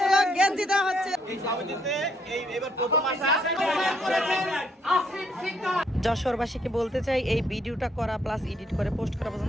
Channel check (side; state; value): both; normal; correlation 0.71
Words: গেঞ্জি দেওয়া হচ্ছে। এই সমিতিতে এবার প্রথম আসা যশোরবাসীকে বলতে চাই, এই ভিডিওটা করা প্লাস এডিট করে পোস্ট করা